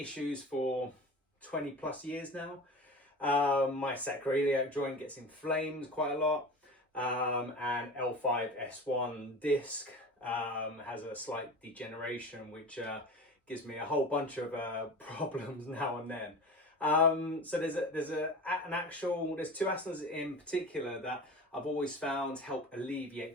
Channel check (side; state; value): both; normal; correlation 0.33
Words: for 20 plus years now. My sacroiliac joint gets inflamed quite a lot. And L5-S1 disc has a slight degeneration, which gives me a whole bunch of problems now and then. So there's two asanas in particular that I've always found help